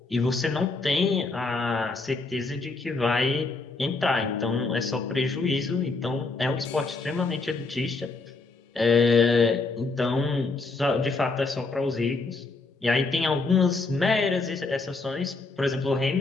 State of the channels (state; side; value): quieter; right; 3.8 dB